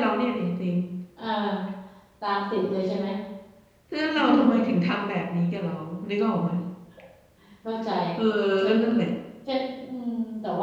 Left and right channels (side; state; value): both; identical; correlation 1.00